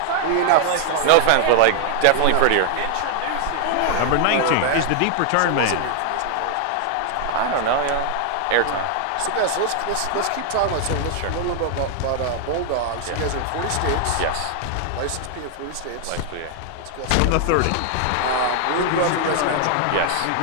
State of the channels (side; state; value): both; different; correlation 0.00